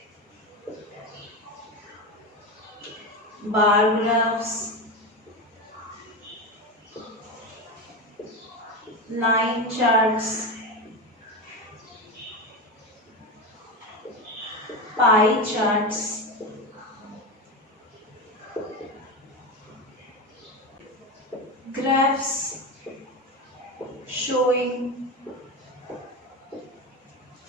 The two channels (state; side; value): normal; both; correlation 0.19